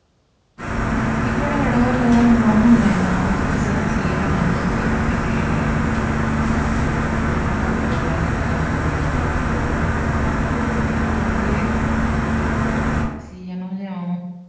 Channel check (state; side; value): identical; both; correlation 1.00